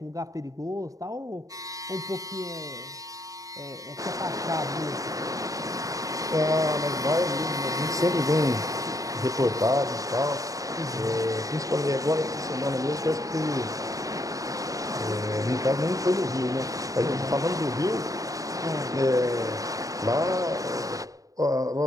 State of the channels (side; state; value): left; late; 0.17 ms